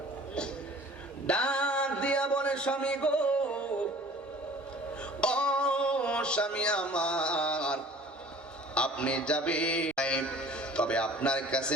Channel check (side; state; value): both; normal; correlation 0.48